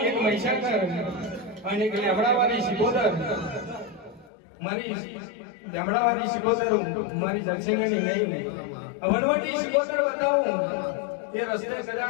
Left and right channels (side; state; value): right; drops out; at 4.3 s